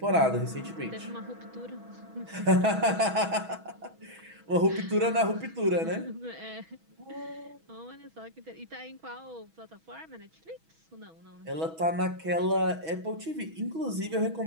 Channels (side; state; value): left; late; 6.2 ms